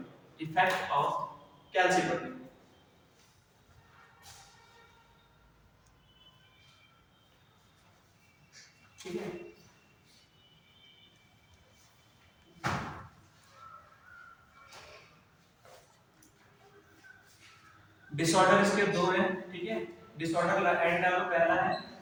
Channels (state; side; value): identical; both; correlation 1.00